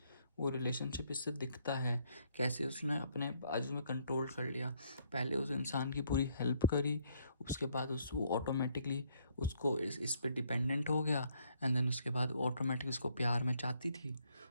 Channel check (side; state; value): both; inverted; correlation -0.68